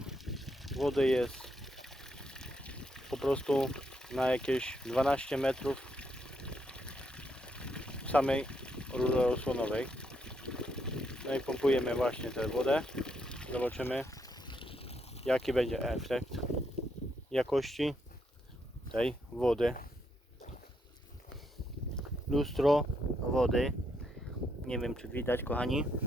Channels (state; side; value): normal; both; correlation 0.77